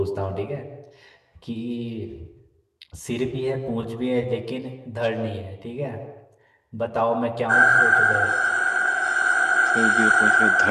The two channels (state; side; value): identical; both; correlation 1.00